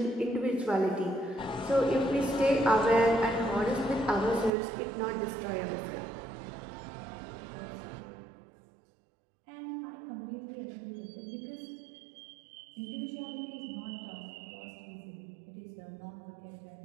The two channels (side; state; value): left; drops out; at 4.5 s